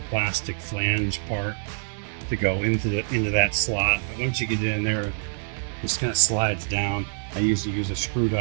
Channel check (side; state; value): left; silent; 61 dB below the other